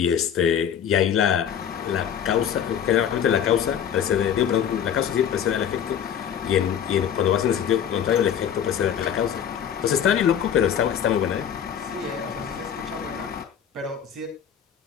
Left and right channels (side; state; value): right; quieter; 8.7 dB